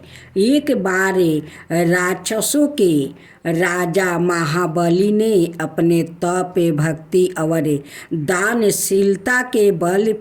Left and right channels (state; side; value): identical; both; correlation 1.00